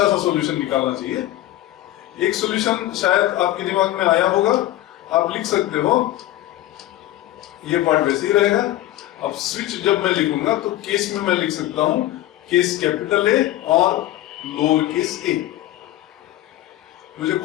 सा सॉल्यूशन निकालना चाहिए। एक सॉल्यूशन शायद आपके दिमाग में आया होगा, आप लिख सकते हो। ये पार्ट वैसे ही रहेगा। अब स्विच जब मैं लिखूंगा तो केस में मैं लिख सकता हूं केस कैपिटल ए और लोअर केस ए। मुझे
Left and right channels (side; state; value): right; quieter; 14.7 dB